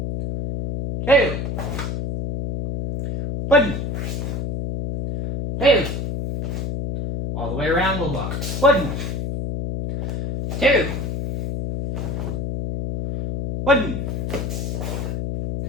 2. 1. 2. All the way around, we'll block. 1. 2. 1.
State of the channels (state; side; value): noise; left; hum, 3 dB below the sound